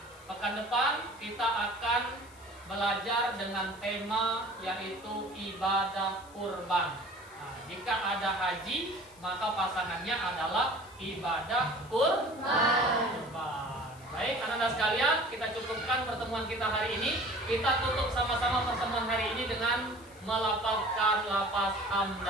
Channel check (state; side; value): noise; left; hiss, 25 dB below the sound